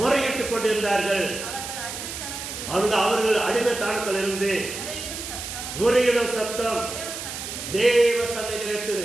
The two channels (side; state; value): right; noise; hiss, 7 dB below the sound